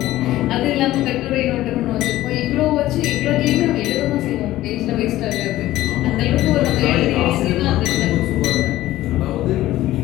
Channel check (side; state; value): right; quieter; 15.4 dB